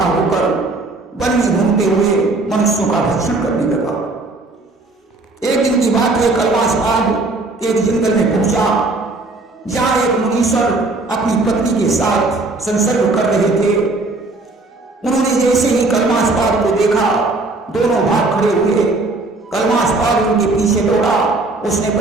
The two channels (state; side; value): quieter; left; 3.2 dB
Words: होकर वन में घूमते हुए मनुष्यों का भक्षण करने लगा। एक दिन की बात है, कलमास्पाद एक जंगल में पहुंचा जहां एक मुनीश्वर अपनी पत्नी के साथ संसर्ग कर रहे थे। उन्होंने जैसे ही कलमास्पाद को देखा दोनों भाग खड़े हुए। कलमास्पाद उनके पीछे दौड़ा, उसने